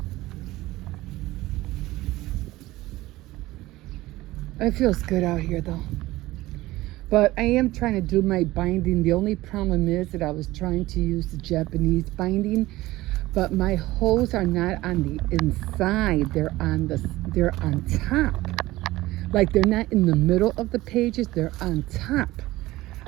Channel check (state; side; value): quieter; left; 17.8 dB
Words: It feels good out here though. But I am trying to do my binding. The only problem is that I was trying to use the Japanese binding, but my holes are not on the inside. They're on top. Like they're not in the middle of the pages, they're on top